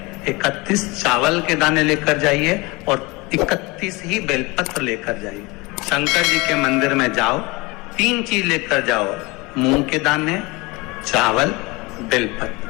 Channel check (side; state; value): right; quieter; 24.6 dB